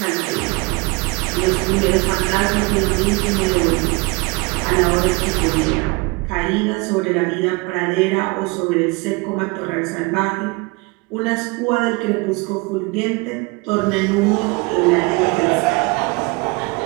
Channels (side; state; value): left; quieter; 26.8 dB